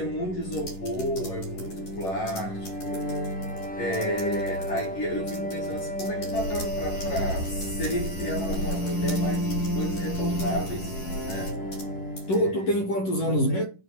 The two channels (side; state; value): right; late; 11 ms